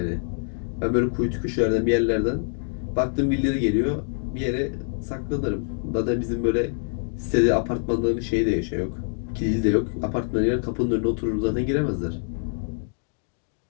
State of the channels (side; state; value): right; silent; digital silence